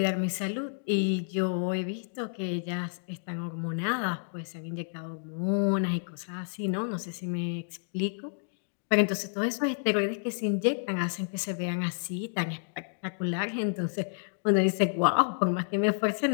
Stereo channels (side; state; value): right; silent; digital silence